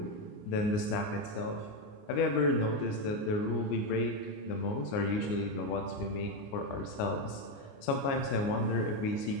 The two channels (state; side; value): late; right; 29 ms